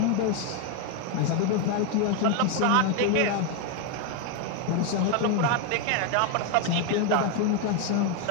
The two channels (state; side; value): different; both; correlation 0.01